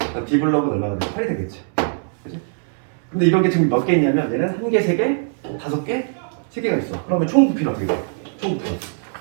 D 블록은 얼마가 되면 8이 되겠지. 그치? 근데 이런 게 지금 몇 개 있냐면 얘는 1개, 3개, 5개, 3개가 있어. 그러면 총 부피는 어떻게 돼?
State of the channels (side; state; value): left; silent; digital silence